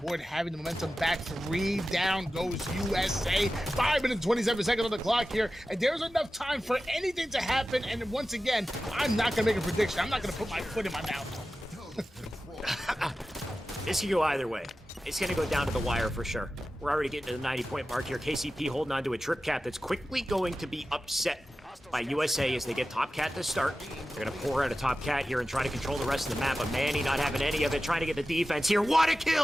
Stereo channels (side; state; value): both; normal; correlation 0.94